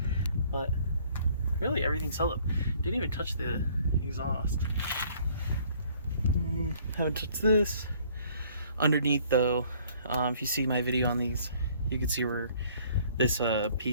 but really everything's held up. Didn't even touch the exhaust. Haven't touched this. Underneath though, if you see my video on these, you can see where this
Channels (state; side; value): inverted; both; correlation -0.59